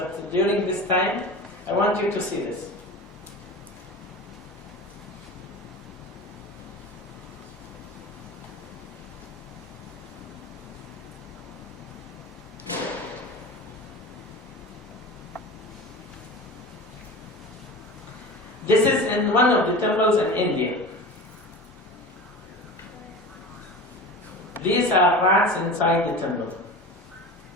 during this time, I want you to see this. This is in one of the temples in India. These are rats inside the temple.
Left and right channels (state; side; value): normal; both; correlation 0.32